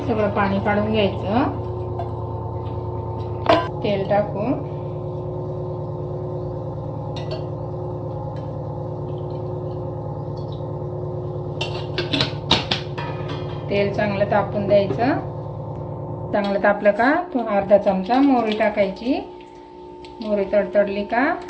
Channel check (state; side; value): identical; both; correlation 1.00